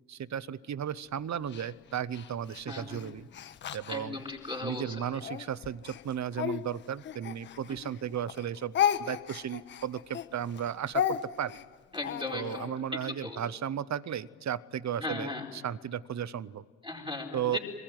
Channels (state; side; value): normal; both; correlation -0.07